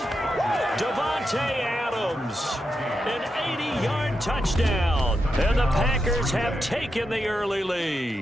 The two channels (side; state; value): both; normal; correlation 0.86